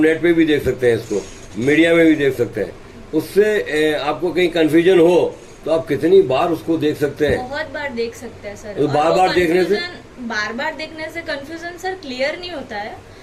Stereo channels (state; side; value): identical; both; correlation 1.00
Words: पे भी देख सकते हैं, इसको मीडिया में भी देख सकते हैं. उससे आपको कहीं कंफ्यूजन हो तो आप कितनी बार उसको देख सकते हैं. बहुत बार देख सकते हैं सर. तो बार बार देखने से कंफ्यूजन सर क्लियर नहीं होता है.